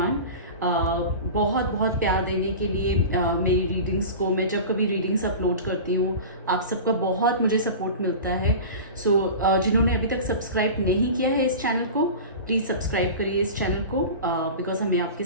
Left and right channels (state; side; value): inverted; both; correlation -0.32